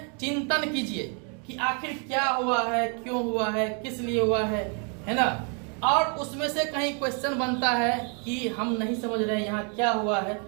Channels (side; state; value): left; quieter; 38.3 dB